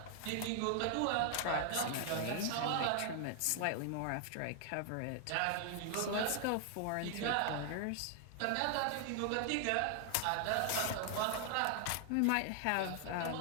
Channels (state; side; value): different; both; correlation 0.00